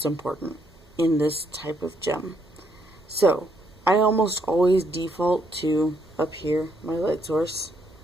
important in this type of gem. So, I almost always default to up here, my light source.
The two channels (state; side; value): normal; both; correlation 0.73